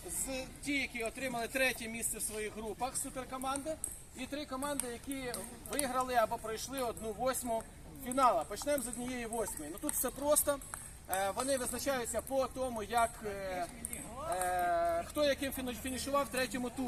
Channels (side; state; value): both; identical; correlation 1.00